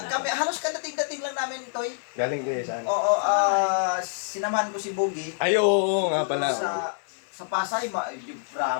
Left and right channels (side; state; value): right; silent; 56 dB below the other